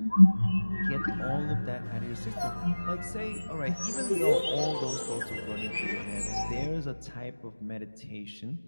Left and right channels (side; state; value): both; inverted; correlation -1.00